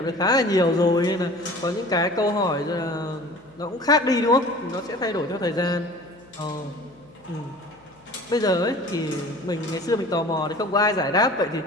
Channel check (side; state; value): left; noise; hum, 30 dB below the sound